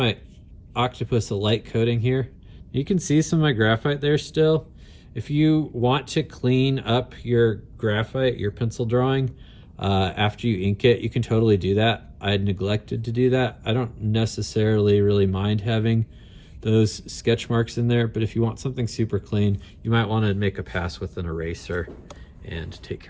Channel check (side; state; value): both; identical; correlation 1.00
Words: octopus a light coating here. You can see some of my graphite there still. If you want to clean up your graphite, your pencil drawing, after you ink it. You can totally do that. I had neglected to do that. I don't necessarily really mind having those sketch marks in there, but if you want something super clean, you might want to make a pass with an eraser and take